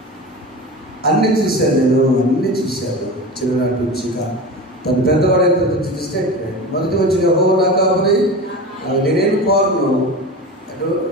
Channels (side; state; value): both; normal; correlation 0.29